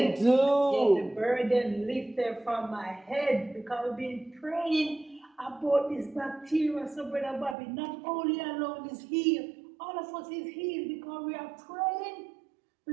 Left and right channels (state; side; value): drops out; left; at 7.6 s